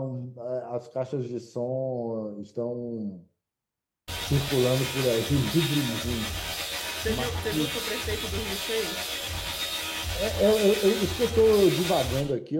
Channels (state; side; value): identical; both; correlation 1.00